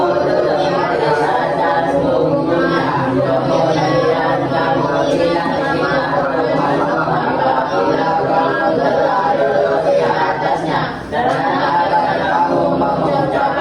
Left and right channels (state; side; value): identical; both; correlation 1.00